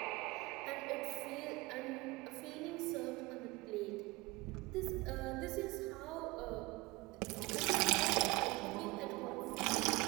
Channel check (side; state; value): left; quieter; 23.2 dB